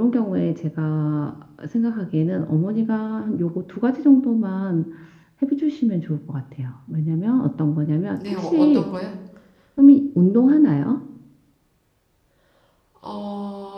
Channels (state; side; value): identical; both; correlation 1.00